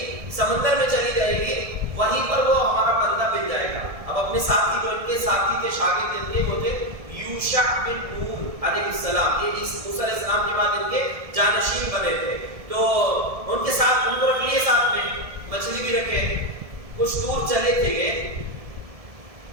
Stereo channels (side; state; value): left; late; 1.7 ms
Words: سمندر میں چلی جائے گی، وہیں پر وہ ہمارا بندہ مل جائے گا. اب اپنے ساتھی جو ان کے ساتھی تھے، شاگرد ان کے وہ تھے یوشع بن نون علیہ السلام. یہ موسیٰ علیہ السلام کے بعد ان کے جانشین بنے تھے. تو ان کے ساتھ ان کو رکھ لیے، ساتھ میں مچھلی بھی رکھے. کچھ دور چلے تھے گئے،